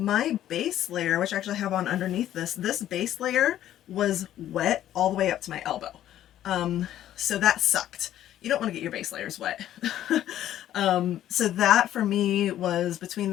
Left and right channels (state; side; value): quieter; right; 12.2 dB